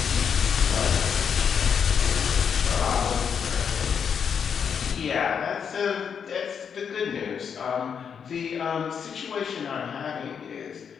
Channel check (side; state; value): right; quieter; 7.1 dB